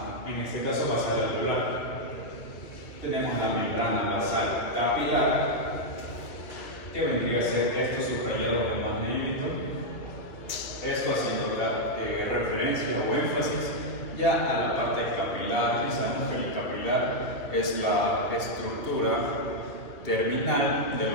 en este caso basal alveolar. Tenemos la membrana basal capilar, que vendría a ser esto subrayado de más negrito, esto haciendo referencia o énfasis ya a la parte capilar. Y sabemos que el capilar es la estructura terminal de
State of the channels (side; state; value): right; late; 2.4 ms